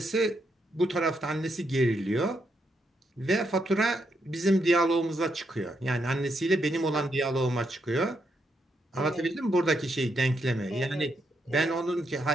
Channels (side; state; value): both; normal; correlation 0.79